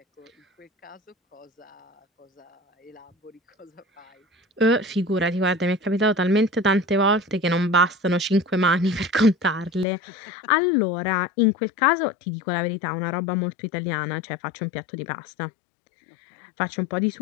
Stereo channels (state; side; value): drops out; right; at 9.9 s